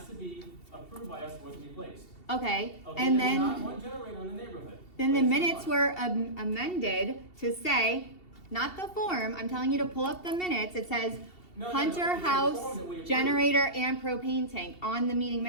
to be approved by us, was replaced. Okay, Okay, and there's not then, one generator in the neighborhood. then the Placed in minutes one. were amended to say, not the form, I'm telling you to pull up the minutes, it says No, Hunter it's the form House, that we approved. generator and propane tank on the meeting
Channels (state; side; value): late; right; 2.7 ms